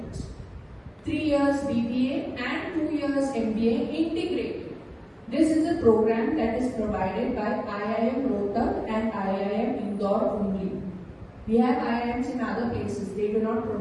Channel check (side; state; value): both; identical; correlation 1.00